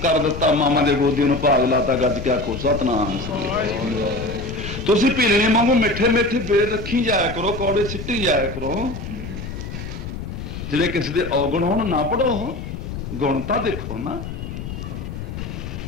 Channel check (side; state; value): left; noise; rumble, 8 dB below the sound